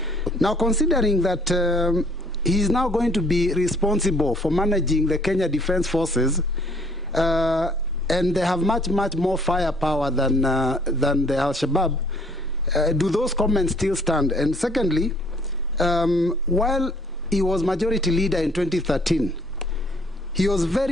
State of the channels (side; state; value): both; normal; correlation 0.60